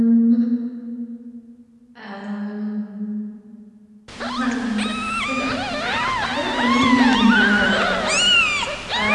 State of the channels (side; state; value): both; identical; correlation 1.00